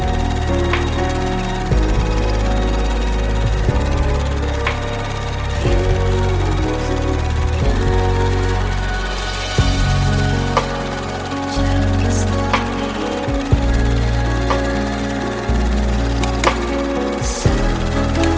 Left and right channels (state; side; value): identical; both; correlation 1.00